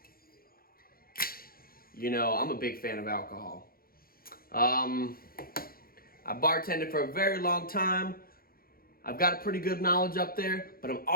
I'm a big fan of alcohol. I bartended for a very long time. I've got a pretty good knowledge up there, but I'm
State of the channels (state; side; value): late; right; 0.43 ms